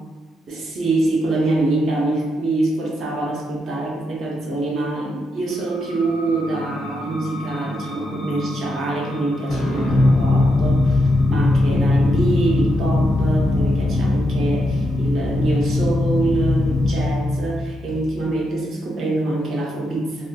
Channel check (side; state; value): both; normal; correlation 0.82